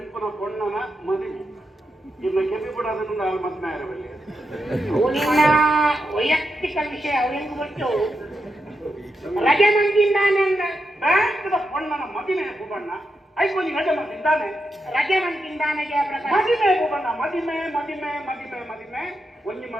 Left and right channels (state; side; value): normal; both; correlation 0.86